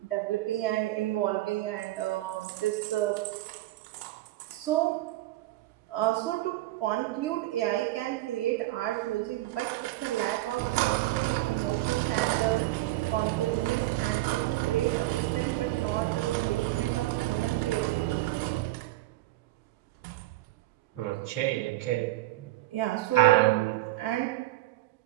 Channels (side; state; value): left; quieter; 17.0 dB